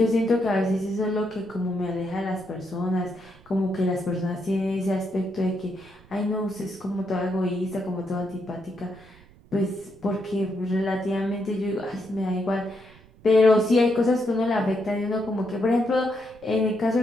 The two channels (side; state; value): right; noise; rumble, 25 dB below the sound